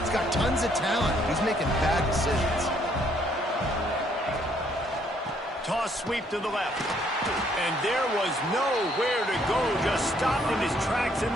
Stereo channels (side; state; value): both; normal; correlation 0.67